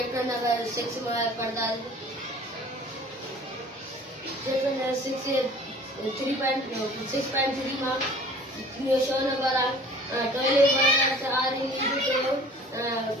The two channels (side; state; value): both; normal; correlation 0.47